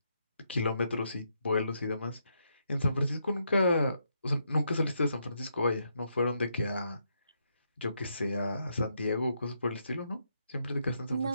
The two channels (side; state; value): both; inverted; correlation -0.78